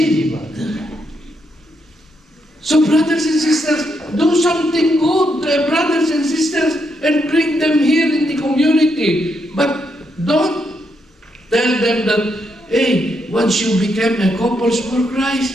So brothers and sisters, do something good, brothers and sisters, and bring them here in the community. But don't tell them that, hey, once you become a couples for Christ,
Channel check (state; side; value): normal; both; correlation 0.79